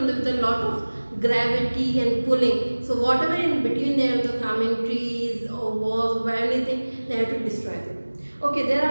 with a lot of gravity and pulling. So whatever in between they are the coming trees or walls or anything, they have to destroy them. Okay, there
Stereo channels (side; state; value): both; inverted; correlation -1.00